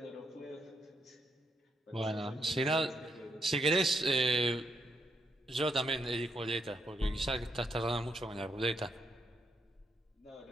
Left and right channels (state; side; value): normal; both; correlation 0.78